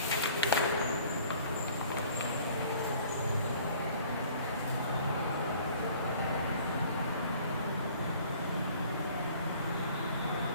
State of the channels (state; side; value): inverted; both; correlation -0.53